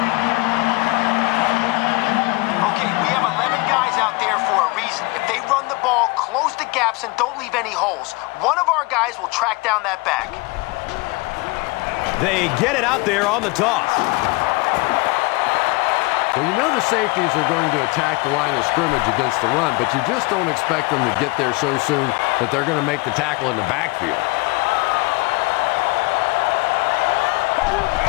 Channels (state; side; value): quieter; right; 25.7 dB